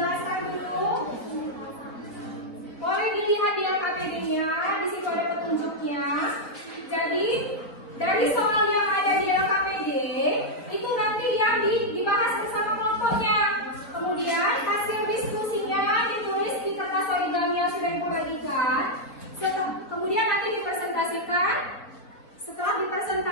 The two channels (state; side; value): late; right; 3.9 ms